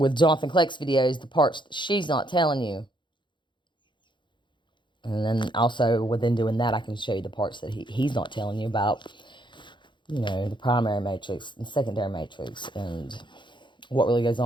Jonathan Kleck's videos, the parts that she's not telling you. And then also within doing that, I can show you the parts that he's not telling you about, you know, the primary matrix and secondary matrix and what really goes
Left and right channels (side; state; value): right; late; 0.23 ms